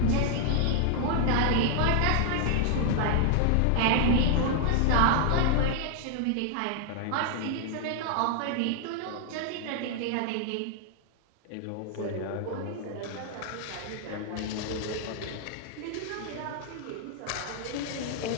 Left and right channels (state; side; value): different; both; correlation 0.00